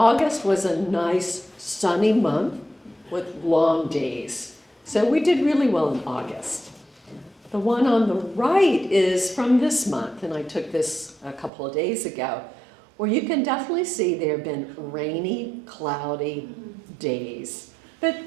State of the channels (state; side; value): drops out; left; at 11.5 s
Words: was a nice sunny month with long days. So we did really well in August. The one on the right is from this month, and I took this a couple of days ago, where you can definitely see there have been rainy, cloudy days. But